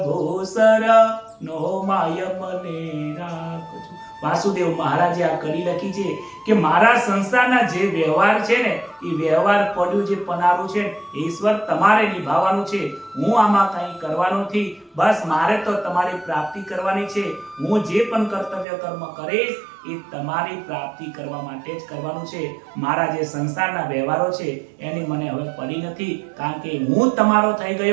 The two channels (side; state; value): left; drops out; at 18.7 s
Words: શરણો માય મને રાખજો. વાસુદેવ મહારાજે આ કડી લખી છે કે મારા સંસારના જે વ્યવહાર છે ને એ વ્યવહાર પડ્યું જે પનારું છે ઈશ્વર તમારે નિભાવવાનું છે, હું આમાં કંઈ કરવાનું નથી. બસ મારે તો તમારી પ્રાપ્તિ કરવાની છે. હું જે પણ કર્તવ્ય કર્મ કરીશ એ તમારી પ્રાપ્તિ કરવા માટે જ કરવાનું છે. મારા જે સંસારના વ્યવહારો છે એની મને હવે પડી નથી, કારણ કે હું તમારો થઈ